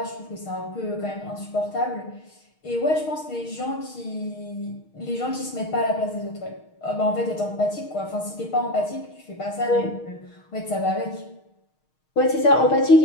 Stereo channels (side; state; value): right; late; 6.4 ms